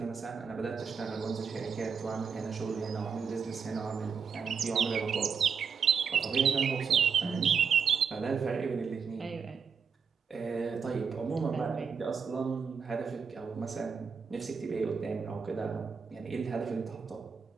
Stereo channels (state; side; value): quieter; left; 6.2 dB